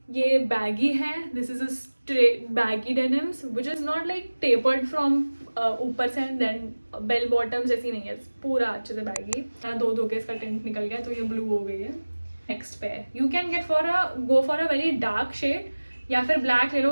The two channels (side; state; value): both; inverted; correlation -1.00